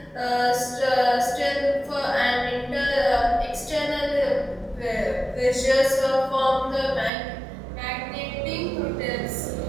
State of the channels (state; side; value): drops out; left; at 7.1 s